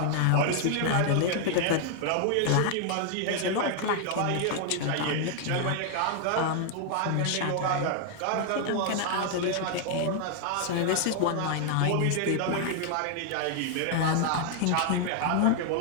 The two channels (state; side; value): different; both; correlation 0.00